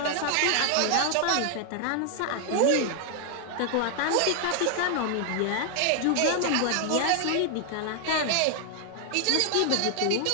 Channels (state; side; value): different; both; correlation 0.00